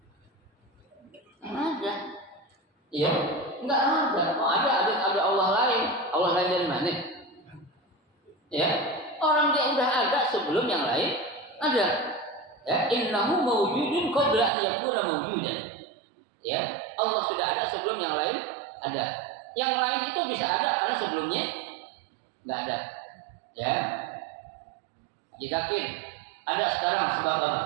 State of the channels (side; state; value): left; drops out; at 14.5 s